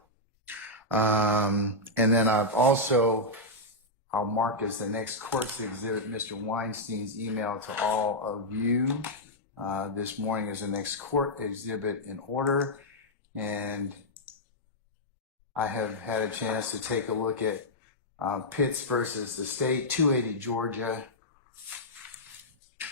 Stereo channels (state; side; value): normal; both; correlation -0.06